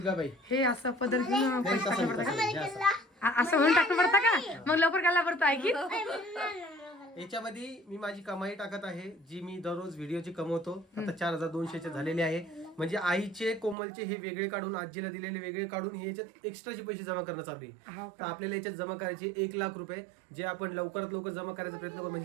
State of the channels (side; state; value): left; drops out; at 13.8 s